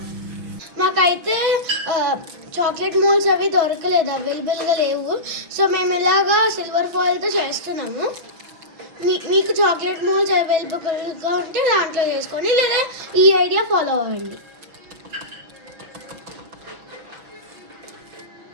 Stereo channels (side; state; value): left; late; 6.1 ms